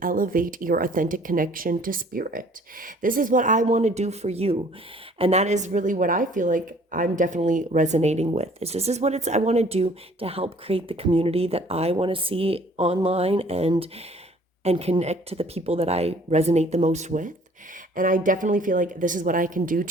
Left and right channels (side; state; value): both; normal; correlation 0.55